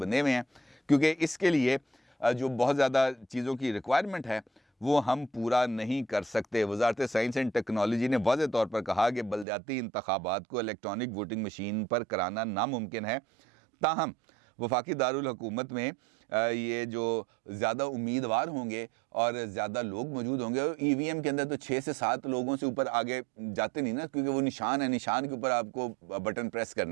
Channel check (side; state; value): left; drops out; at 9.5 s